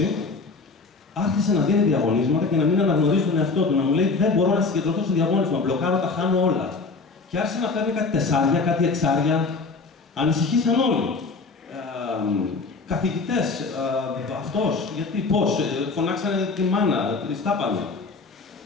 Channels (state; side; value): quieter; right; 4.1 dB